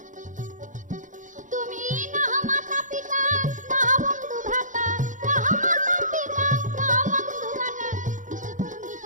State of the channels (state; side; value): late; left; 0.37 ms